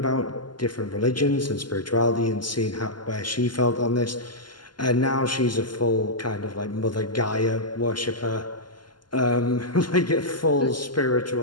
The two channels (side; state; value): right; late; 0.71 ms